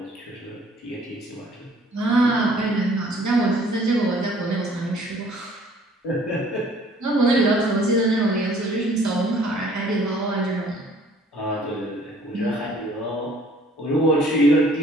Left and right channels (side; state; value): both; normal; correlation 0.56